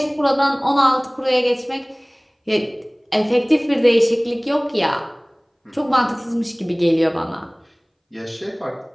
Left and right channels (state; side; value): identical; both; correlation 1.00